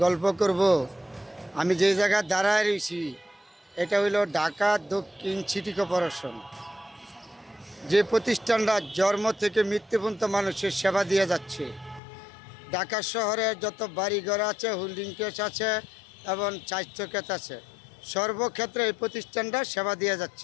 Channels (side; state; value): right; drops out; at 12.0 s